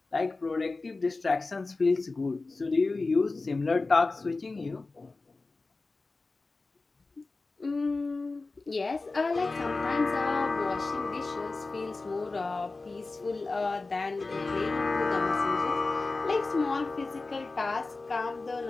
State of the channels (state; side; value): quieter; right; 3.6 dB